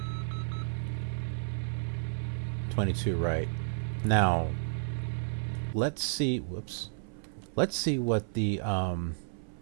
22 right. Now, let's see. Whoops. Let's see what the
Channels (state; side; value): silent; left; 56 dB below the other